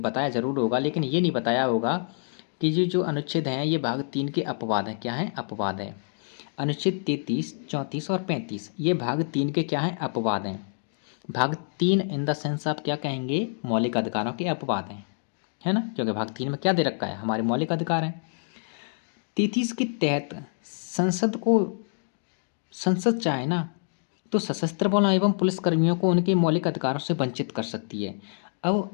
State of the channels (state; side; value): silent; right; digital silence